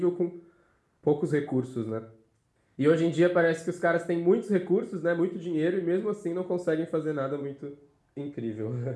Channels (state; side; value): identical; both; correlation 1.00